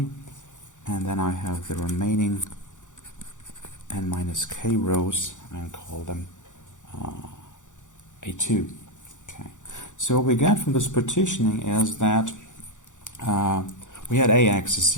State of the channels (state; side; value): late; right; 0.86 ms